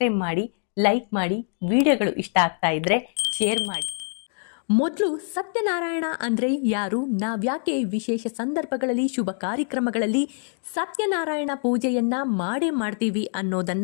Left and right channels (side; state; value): right; silent; 62 dB below the other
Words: ಮಾಡಿ, ಲೈಕ್ ಮಾಡಿ, ವಿಡಿಯೋಗಳು ಇಷ್ಟ ಆಗ್ತಾ ಇದ್ರೆ ಶೇರ್ ಮಾಡಿ. ಮೊದಲು ಸತ್ಯನಾರಾಯಣ ಅಂದ್ರೆ ಯಾರು, ನಾವ್ಯಾಕೆ ವಿಶೇಷ ಸಂದರ್ಭಗಳಲ್ಲಿ ಶುಭ ಕಾರ್ಯಕ್ರಮಗಳಲ್ಲಿ ಸತ್ಯನಾರಾಯಣ ಪೂಜೆಯನ್ನ ಮಾಡೇ ಮಾಡ್ತೀವಿ